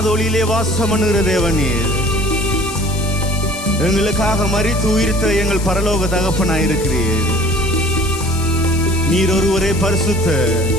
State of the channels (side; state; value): left; noise; hiss, 12 dB below the sound